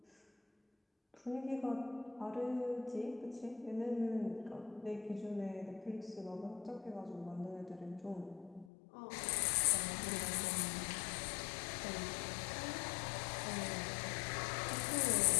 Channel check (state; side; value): drops out; right; at 8.7 s